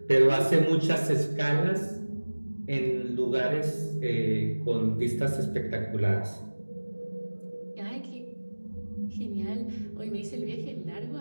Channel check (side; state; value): both; inverted; correlation -1.00